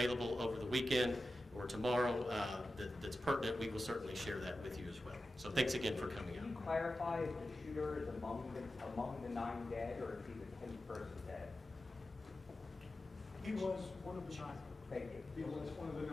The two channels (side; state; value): both; normal; correlation 0.93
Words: over the weekend or tomorrow that's pertinent, we will certainly share that with you as well. So thanks again for coming out. Can you clarify if the shooter is among the 9 dead, or is he the 10th person dead? He was one of the 9. Thank you. He was one of the